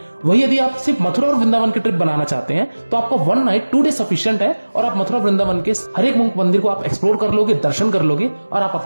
वही यदि आप सिर्फ मथुरा और वृंदावन की ट्रिप बनाना चाहते हैं तो आपको 1 नाइट 2 डे सफिशिएंट है और आप मथुरा वृंदावन के हर एक मंदिर को आप एक्सप्लोर कर लोगे, दर्शन कर लोगे और आप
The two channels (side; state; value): both; inverted; correlation -1.00